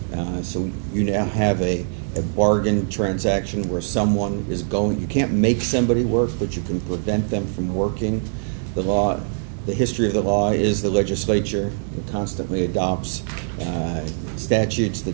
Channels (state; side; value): silent; left; 64 dB below the other